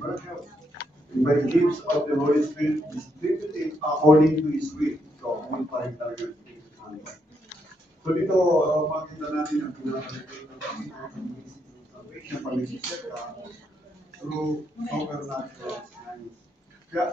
and by gifts of the Holy Spirit distributed according to His will. So, yun pa rin talaga. So dito, makita natin ang pinaka-relate ng salvation, pag-isip ka, through supernatural signs.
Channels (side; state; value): both; normal; correlation 0.78